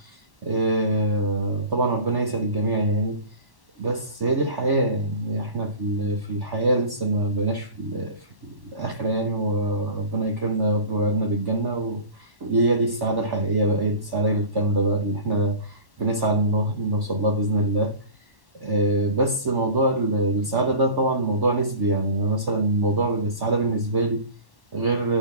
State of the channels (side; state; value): left; late; 1.1 ms